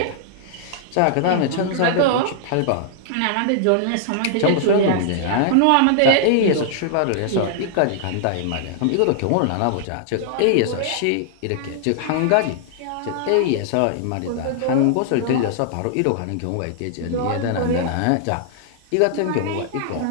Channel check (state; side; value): different; both; correlation -0.01